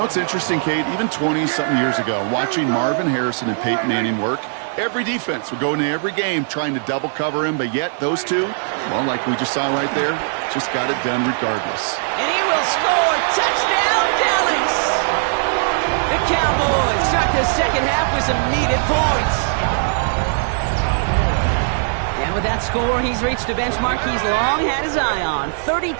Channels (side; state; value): left; silent; digital silence